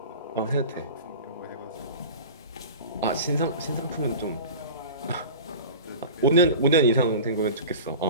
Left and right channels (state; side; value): inverted; both; correlation -0.35